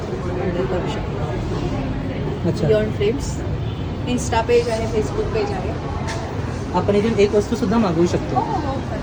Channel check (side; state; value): both; identical; correlation 1.00